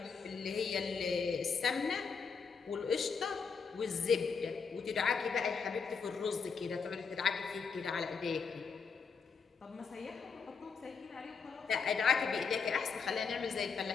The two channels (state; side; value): quieter; right; 5.6 dB